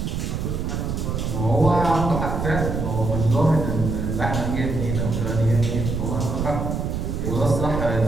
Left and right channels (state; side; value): noise; right; rumble, 2 dB below the sound